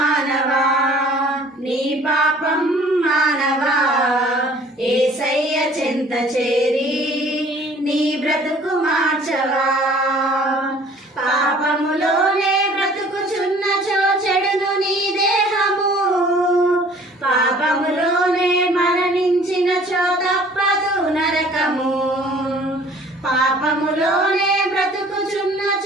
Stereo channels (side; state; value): both; normal; correlation 0.52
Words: నీ పాపం మానవా యేసయ్య చెంత చేరి నీ బ్రతుకు మార్చవా పాపములోనే బ్రతుకుచున్నచో చెడును నీ దేహము పాపములోనే మరణించినచో తప్పదు నరకము పాపములోనే